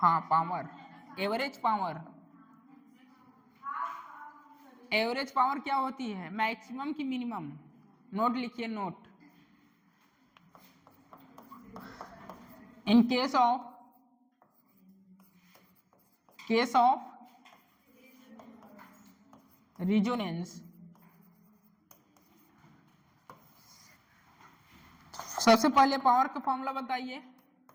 power, average power. Average power क्या होती है, मैक्सिमम की मिनिमम। नोट लिखिए, note, in case of resonance, सबसे पहले पावर का फॉर्मूला बताइए।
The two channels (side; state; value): both; identical; correlation 1.00